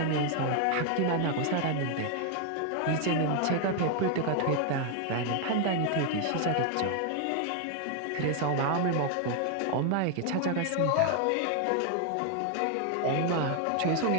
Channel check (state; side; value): different; both; correlation 0.00